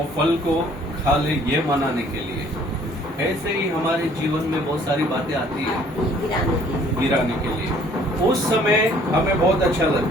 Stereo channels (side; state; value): both; normal; correlation 0.58